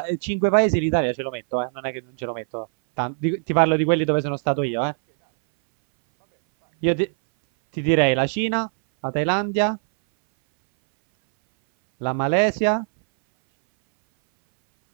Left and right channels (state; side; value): silent; left; 61 dB below the other